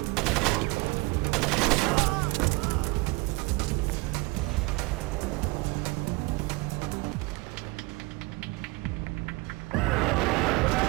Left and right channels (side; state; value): left; quieter; 24.6 dB